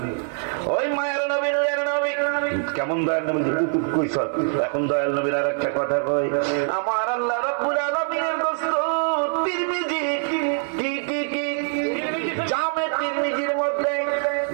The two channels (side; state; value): left; silent; 61 dB below the other